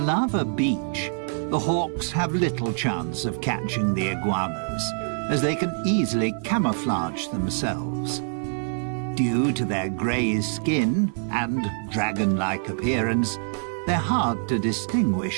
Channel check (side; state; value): left; silent; 57 dB below the other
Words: beach, the hawks have little chance of catching the iguanas, as they can easily camouflage themselves. Due to their grey skin and dragon-like appearance, they're hard to